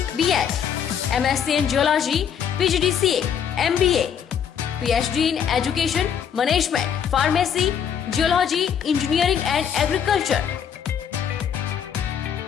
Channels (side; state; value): right; quieter; 8.1 dB